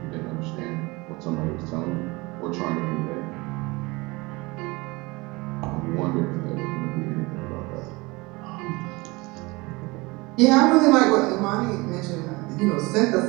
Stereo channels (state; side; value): quieter; left; 24.1 dB